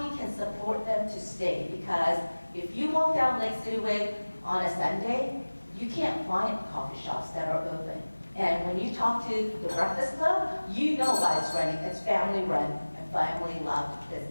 we can support them to stay, because if you walk down Lake City Way on a Sunday, you can't find coffee shops that are open. And when you talk to the Breakfast Club, you know why it's running. It's family run and family loved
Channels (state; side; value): inverted; both; correlation -1.00